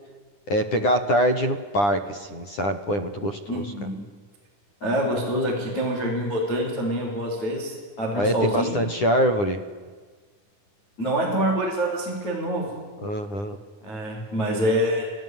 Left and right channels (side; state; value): right; late; 9.9 ms